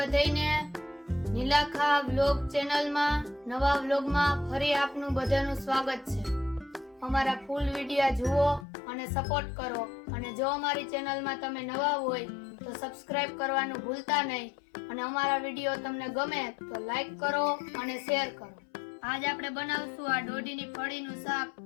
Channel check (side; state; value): right; drops out; at 8.7 s